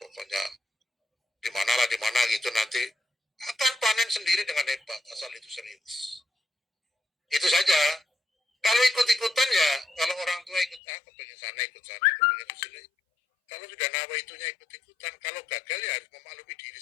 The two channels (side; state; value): right; drops out; at 10.8 s